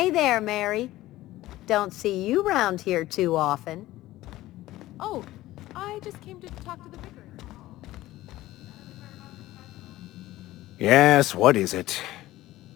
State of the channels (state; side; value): quieter; right; 16.3 dB